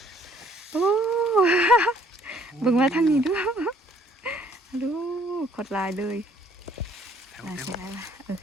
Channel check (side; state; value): both; normal; correlation 0.62